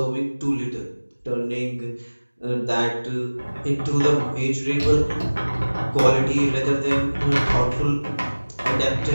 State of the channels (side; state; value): both; inverted; correlation -1.00